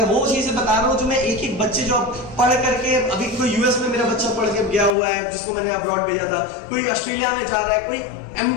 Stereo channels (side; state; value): right; drops out; at 5.0 s